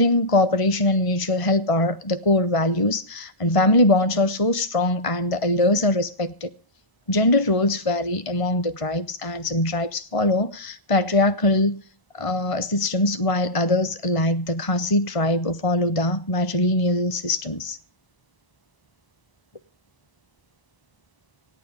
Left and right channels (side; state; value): right; late; 1.0 ms